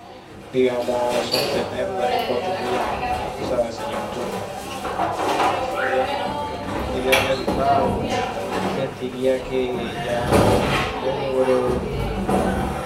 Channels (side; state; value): both; identical; correlation 1.00